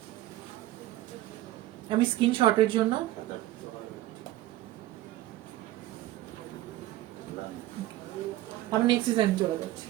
আমি স্ক্রিনশটের জন্য আমি নেক্সট ডিজাইন চলে যাচ্ছি।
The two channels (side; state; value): left; quieter; 15.4 dB